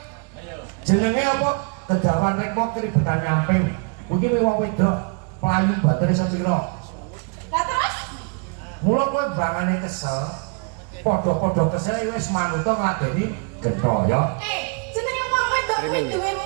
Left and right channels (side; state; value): left; quieter; 34.4 dB